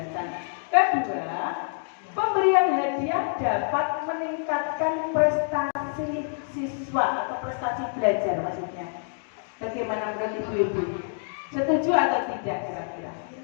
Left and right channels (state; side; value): silent; right; digital silence